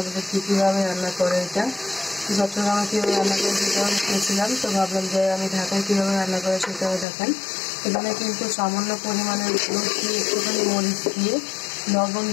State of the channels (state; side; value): drops out; right; at 7.1 s